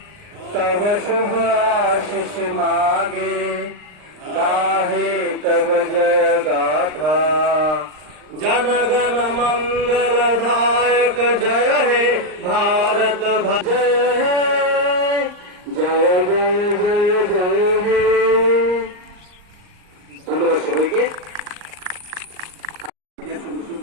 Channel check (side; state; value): left; late; 39 ms